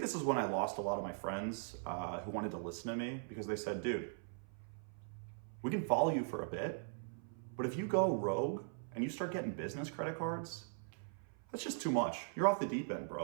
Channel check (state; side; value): silent; left; 51 dB below the other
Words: is when I lost a lot of my friends who wanted to listen to me, because they said, dude, we can follow you for a bit, but if you go rogue and you start getting business credit cards, that's just too much. You're off the deep end,